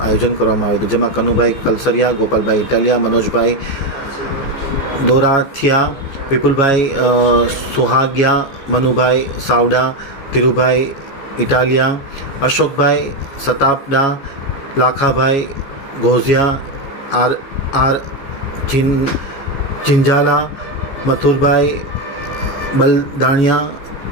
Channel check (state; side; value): late; right; 15 ms